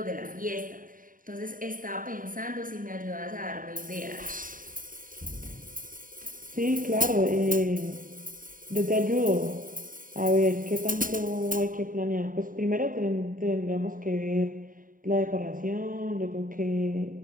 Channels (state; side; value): late; left; 0.40 ms